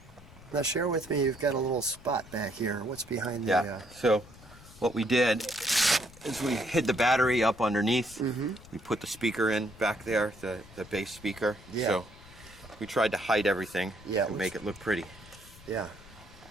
Now share with me. You've got a little spot back here. What's behind the? Yeah. So what we did is we hid the battery up underneath. Mm-hmm. We put the speaker in back there, the bass speaker. Yeah. So we tried to hide everything to make it look pretty. Yeah.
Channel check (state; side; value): noise; left; rumble, 21 dB below the sound